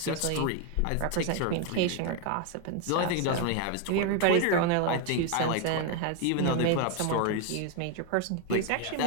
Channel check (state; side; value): different; both; correlation 0.01